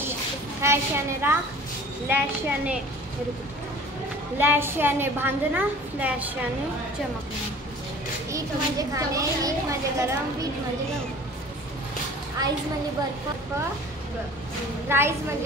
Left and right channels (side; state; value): both; normal; correlation 0.45